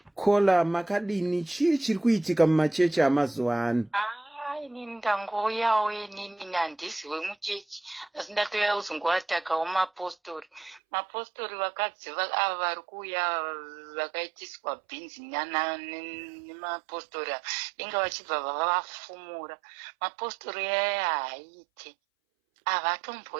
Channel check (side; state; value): left; drops out; at 10.8 s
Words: Kola makadini chiri kuitika mumachechi amazuva ano. Inini ndangoyawo inini handiziwe muchechi, asi ndatoya kuzongoatakawo mapostori vakadzi ava vari kuuya vakaitiswa bhinzi nemapostori inga vachibva vavafumura. Mapostori aya haaite,